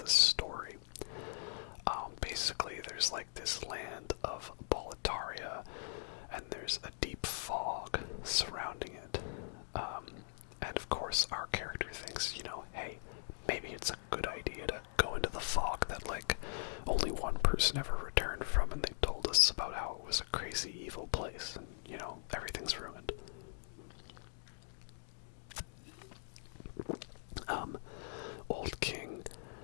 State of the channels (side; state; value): right; silent; digital silence